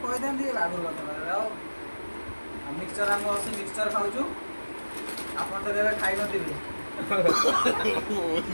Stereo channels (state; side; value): inverted; both; correlation -1.00